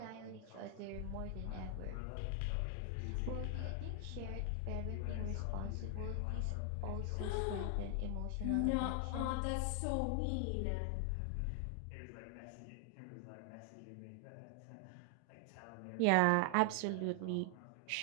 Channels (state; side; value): different; both; correlation 0.00